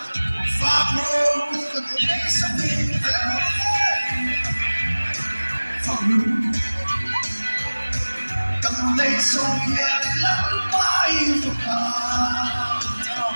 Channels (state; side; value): inverted; both; correlation -1.00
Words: cầm lấy sông nhẹ lắm bay phục hà